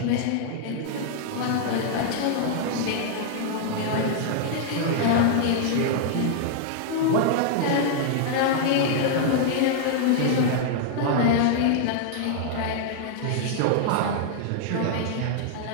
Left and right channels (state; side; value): different; both; correlation -0.01